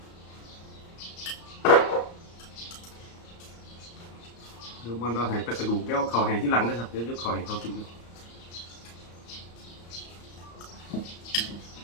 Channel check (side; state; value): right; late; 34 ms